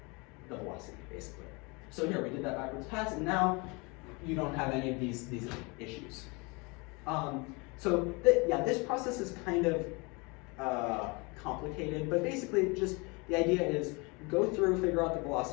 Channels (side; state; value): right; quieter; 28.4 dB